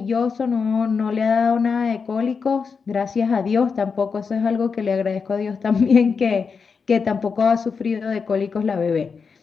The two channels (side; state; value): right; quieter; 5.5 dB